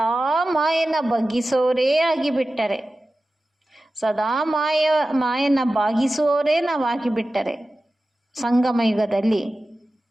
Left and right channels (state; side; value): normal; both; correlation 0.95